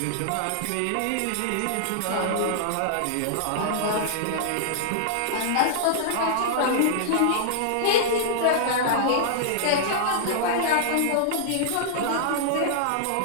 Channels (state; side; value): different; both; correlation -0.02